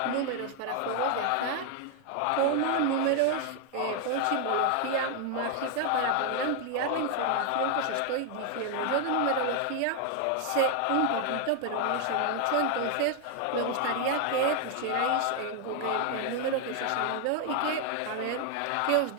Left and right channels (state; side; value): different; both; correlation 0.00